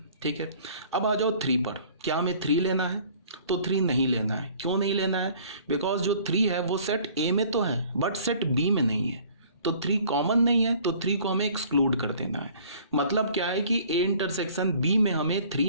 ठीक है। अब आ जाओ 3 पर, क्या हमें 3 लेना है, तो 3 नहीं लेना है। क्यों नहीं लेना है, बिकॉज जो 3 है वो सेट ए में तो है बट सेट बी में नहीं है, तो 3 कॉमन नहीं है, तो 3 को हमें एक्सक्लूड कर देना है। मतलब क्या है कि ए इंटरसेक्शन बी में हमें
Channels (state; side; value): inverted; both; correlation -0.53